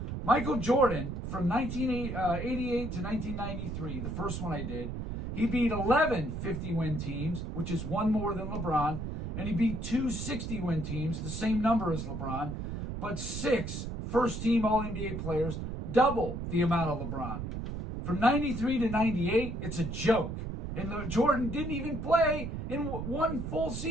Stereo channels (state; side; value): noise; right; rumble, 5 dB below the sound